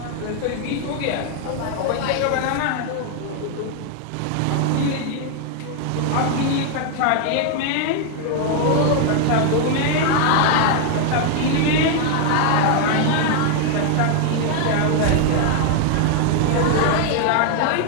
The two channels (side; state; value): both; different; correlation 0.00